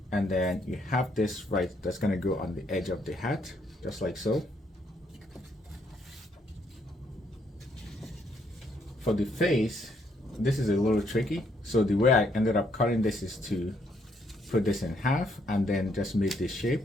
And then you have this right, that's going to go on the edge of the hat, just like so. For the face, this is a little tricky. So the way I ended up cutting this is to put this in half and then just make this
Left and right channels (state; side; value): normal; both; correlation 0.72